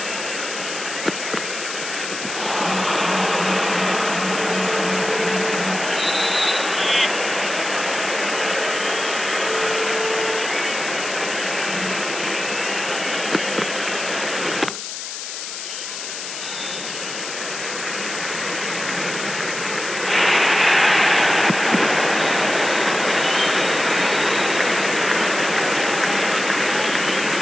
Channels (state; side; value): noise; left; hiss, 7 dB below the sound